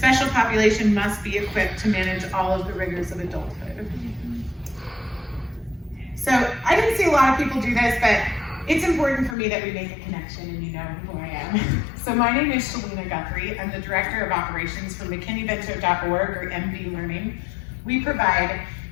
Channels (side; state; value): right; drops out; at 9.3 s